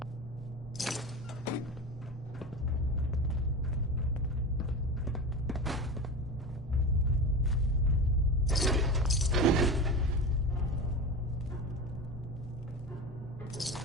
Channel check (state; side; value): normal; both; correlation 0.27